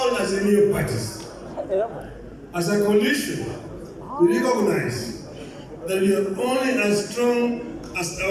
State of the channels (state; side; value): identical; both; correlation 1.00